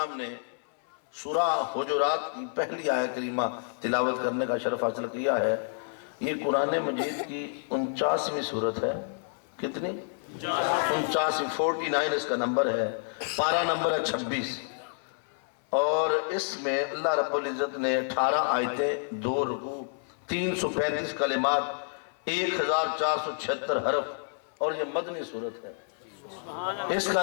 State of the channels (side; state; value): right; silent; 58 dB below the other